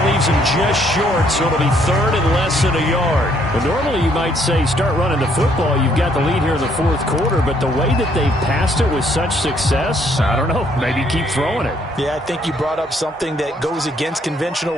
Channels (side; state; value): both; normal; correlation 0.68